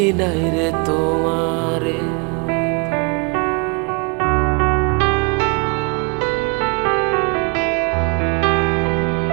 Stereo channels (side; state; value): left; quieter; 31.7 dB